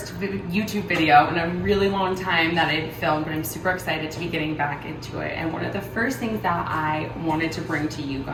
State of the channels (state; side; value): identical; both; correlation 1.00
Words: YouTube video in a really long time that I've filmed, but I'm super excited to be getting back into it. And one of the first things that I wanted to bring to you